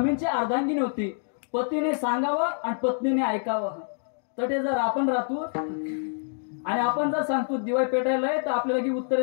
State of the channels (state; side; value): silent; right; digital silence